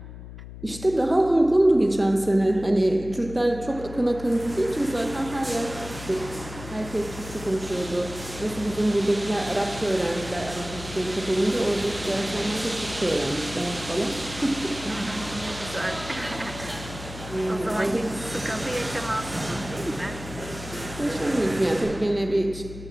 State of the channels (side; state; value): left; noise; hum, 13 dB below the sound